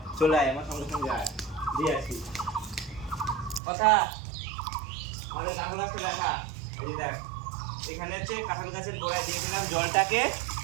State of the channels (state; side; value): drops out; left; at 3.6 s